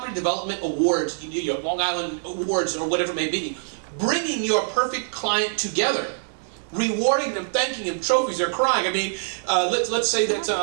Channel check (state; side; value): silent; left; digital silence